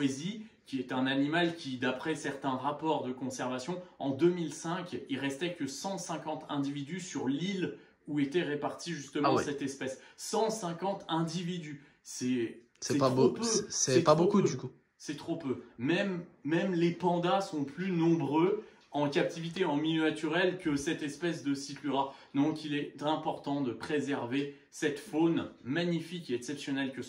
qui est un animal qui, d'après certains rapports de conservation, en 2005, il restait que 150 individus sur l'île où était répartie justement cette espèce. 150 individus, c'est pas beau, c'est pas beaucoup du coup. C'est trop peu. Même les pandas sont plus nombreux en captivité en milieu naturel que cette espèce de Cyclura. Donc il est important de préserver cette faune magnifique et exceptionnelle que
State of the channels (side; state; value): both; identical; correlation 1.00